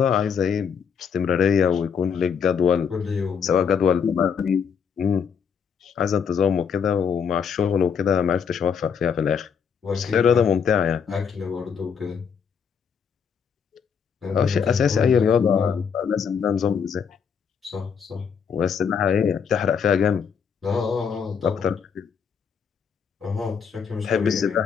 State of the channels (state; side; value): quieter; right; 6.8 dB